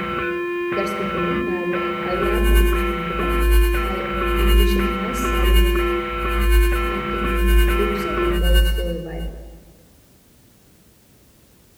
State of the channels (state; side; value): identical; both; correlation 1.00